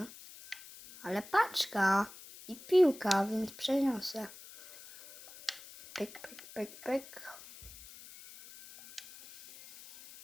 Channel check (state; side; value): noise; left; hiss, 18 dB below the sound